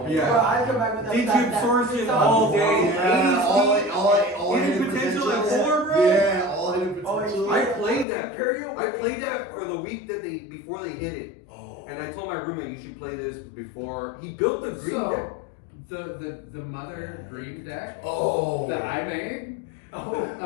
Yeah. Bro, I'd come back with that. D-tube sources all day. Yeah, all Hidden hidden potential at potentials. 4, bro? Yeah, all hidden Oh, potential. I played that. Imperial. I played that for the week that before they hit it. Oh. And I told my roommate you should play this before. He built the green deck. So the mother green deck Oh. that I made. Oh.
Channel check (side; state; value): right; drops out; at 8.1 s